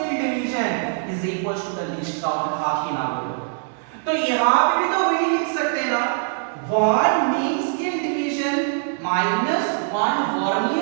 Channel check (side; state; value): left; silent; digital silence